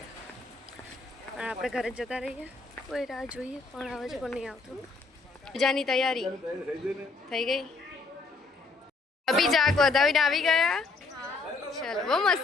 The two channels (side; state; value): right; quieter; 3.9 dB